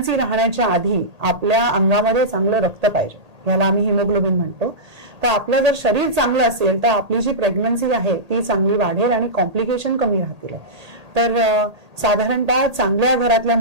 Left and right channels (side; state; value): left; late; 1.8 ms